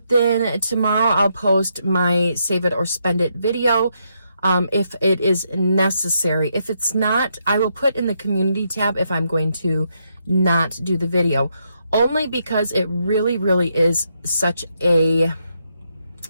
then tomorrow I'll post my Save It or Spend It video. If it is necessary. If it's not, I will put in the community tab if I'm going to not do the video. Only because it really is such a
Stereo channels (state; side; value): inverted; both; correlation -0.78